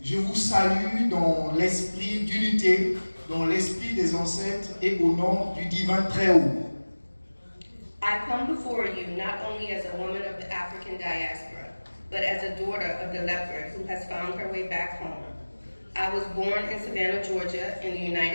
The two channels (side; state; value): both; inverted; correlation -1.00